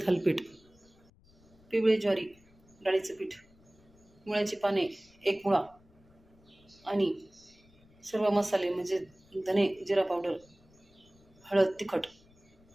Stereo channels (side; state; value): left; noise; rumble, 29 dB below the sound